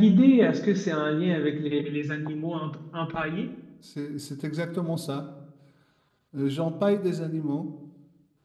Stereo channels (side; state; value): both; identical; correlation 1.00